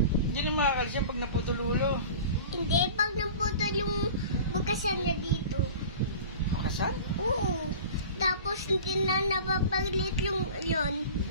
Hindi na makakalis yan pag naputol ulo. Hindi, pag naputol yung bukasan niya dito. Bukasan? Oo. Tapos hindi na napapaglit yung yun.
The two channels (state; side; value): inverted; both; correlation -0.38